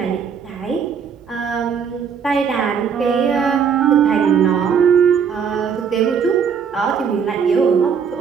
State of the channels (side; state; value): left; quieter; 6.9 dB